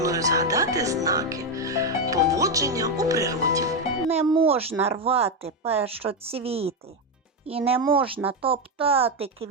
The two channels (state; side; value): normal; both; correlation 0.07